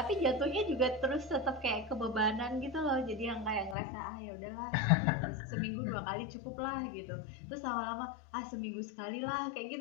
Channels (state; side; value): drops out; right; at 3.8 s